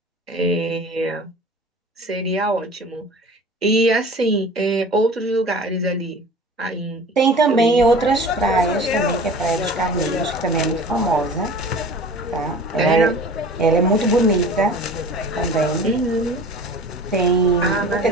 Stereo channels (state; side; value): normal; both; correlation 0.41